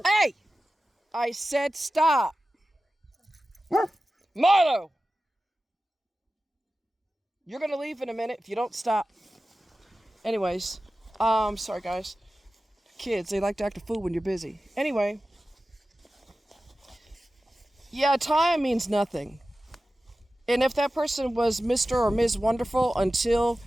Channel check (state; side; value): normal; both; correlation 0.95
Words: Hey! I said stop. Milo! You're going to leave in a minute if you don't stop. Anyways, sorry guys. Kids, they like to act a fool when you're busy. Anyway. Yeah, time means nothing. And if that person was Mr. or Ms. Wonderful until